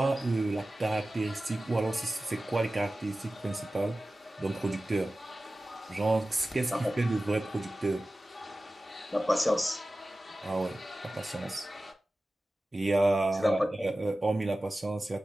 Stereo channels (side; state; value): both; normal; correlation 0.96